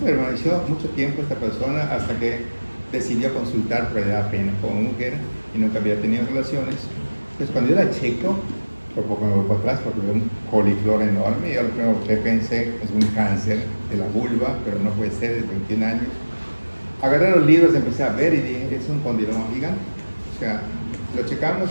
mucho tiempo esta persona hasta que decidió consultar, pero le da pena como mujer y nunca había tenido relaciones. Entonces cuando yo la checo, por poco me voy para atrás porque veo un coliflor enorme, y yo lo primero que pensé es un cáncer de la vulva, pero no puede ser, de 21 años. Agarré los libros, empecé a ver y dije, es un condiloma gigante. O sea, lo checamos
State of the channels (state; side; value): inverted; both; correlation -1.00